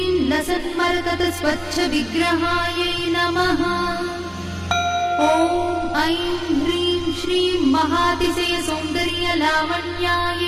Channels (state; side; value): identical; both; correlation 1.00